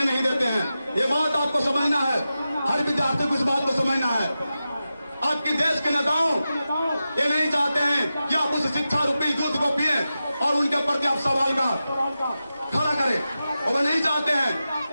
नहीं देते हैं। ये बात आपको समझना है, हर विद्यार्थी को इस बात को समझना है। आपकी देश के नेताओं ये नहीं चाहते हैं कि आप उस शिक्षा रूपी दूध को पिए और उनके प्रति आप सवाल का खड़ा करें, और वो नहीं चाहते हैं।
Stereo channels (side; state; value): both; inverted; correlation -0.92